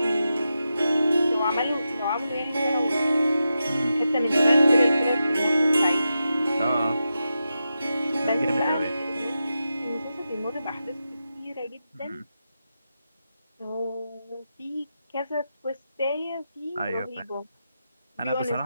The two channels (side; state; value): both; inverted; correlation -0.89